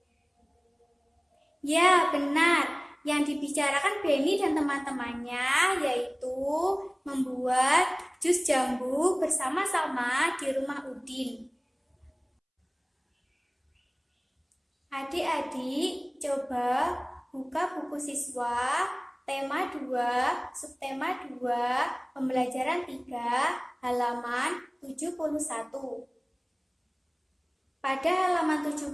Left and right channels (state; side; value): identical; both; correlation 1.00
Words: Ya, benar. Yang dibicarakan Beni dan teman-temannya yaitu membuat jus jambu bersama-sama di rumah Udin. Adik-adik, coba buka buku siswa tema 2, subtema 2, pembelajaran 3, halaman 71. Pada halaman